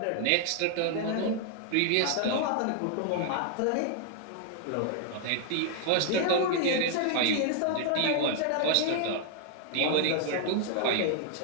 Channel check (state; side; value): different; both; correlation 0.00